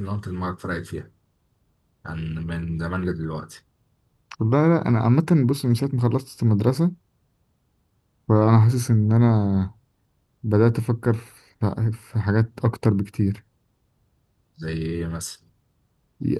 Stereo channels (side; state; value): both; identical; correlation 1.00